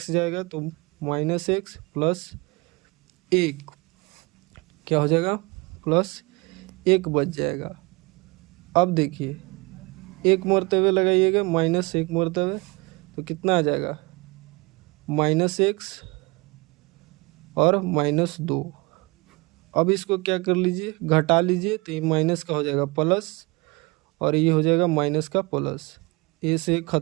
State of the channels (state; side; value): quieter; left; 26.0 dB